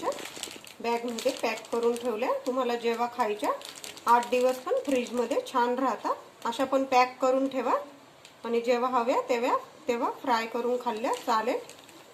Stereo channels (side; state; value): both; identical; correlation 1.00